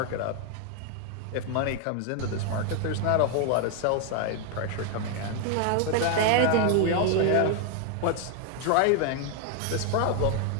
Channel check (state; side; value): different; both; correlation 0.00